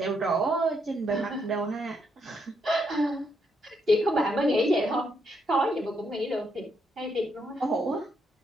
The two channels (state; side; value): normal; both; correlation 0.76